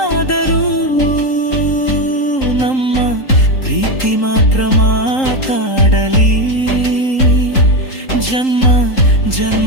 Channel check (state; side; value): late; right; 3.8 ms